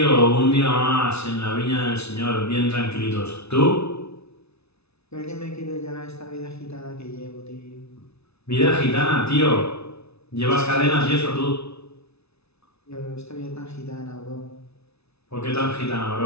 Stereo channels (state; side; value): late; right; 0.80 ms